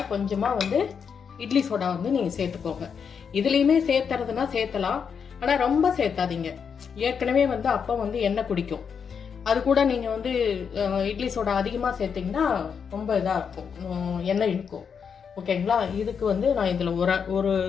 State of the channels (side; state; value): right; quieter; 6.7 dB